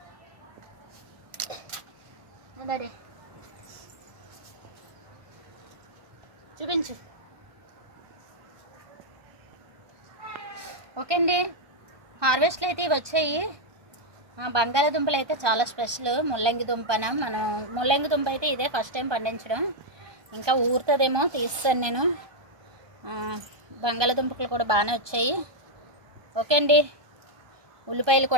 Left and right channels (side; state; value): left; late; 1.2 ms